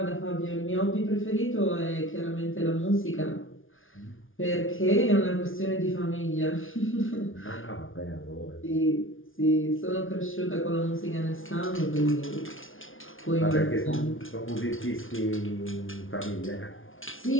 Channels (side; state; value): right; late; 0.58 ms